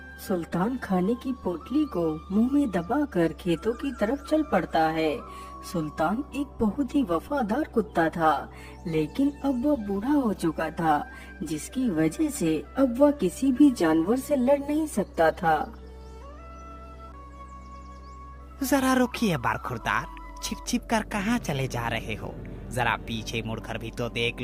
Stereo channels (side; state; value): both; identical; correlation 1.00